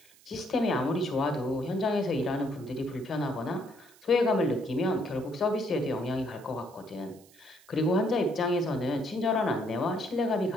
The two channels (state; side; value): noise; right; hiss, 26 dB below the sound